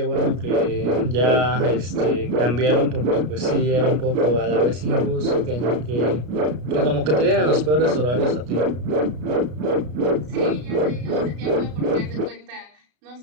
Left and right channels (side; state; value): left; late; 33 ms